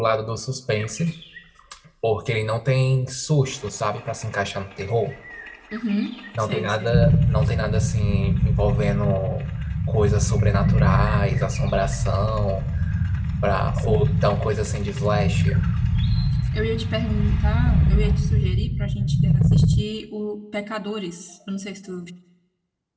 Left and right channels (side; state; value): both; identical; correlation 1.00